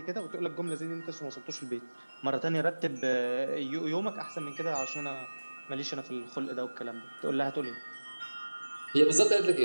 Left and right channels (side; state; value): both; inverted; correlation -1.00